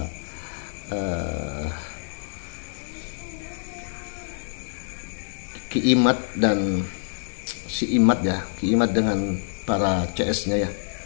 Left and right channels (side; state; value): right; silent; digital silence